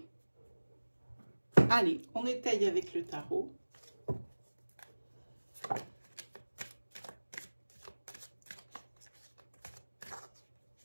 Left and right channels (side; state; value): both; inverted; correlation -1.00